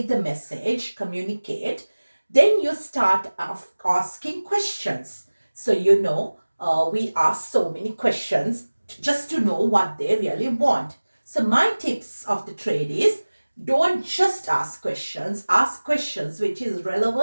the message, communicate, then you start asking questions. So we ask so many questions just to know what they really want. So my tips of the trade is, don't just ask questions which is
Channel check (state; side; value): inverted; both; correlation -1.00